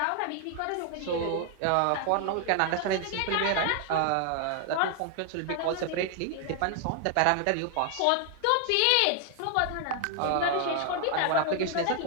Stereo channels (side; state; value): both; different; correlation 0.00